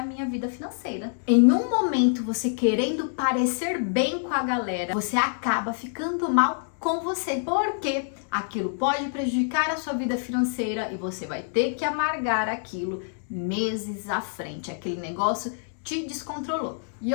minha vida financeira. Em um momento, você querendo parecer bem com a galera, você acaba ficando mal com você. Porque aquilo pode prejudicar a sua vida financeira e você vai ter que amargar aquilo meses à frente. Aquele negócio te descontrolou. E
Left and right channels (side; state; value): right; silent; 61 dB below the other